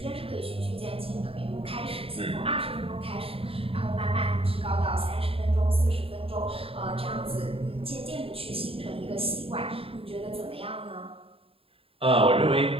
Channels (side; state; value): left; late; 0.27 ms